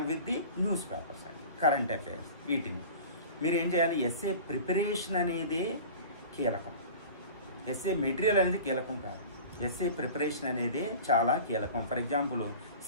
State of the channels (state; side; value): inverted; both; correlation -0.38